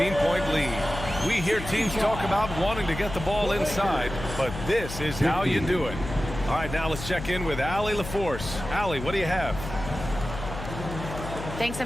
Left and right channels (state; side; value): noise; left; hum, 9 dB below the sound